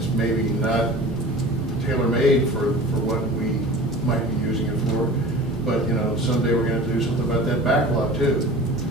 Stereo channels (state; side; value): normal; both; correlation 0.39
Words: maybe not tailor-made for what we might be using it for, but you know, someday we're going to do something about that backlot too.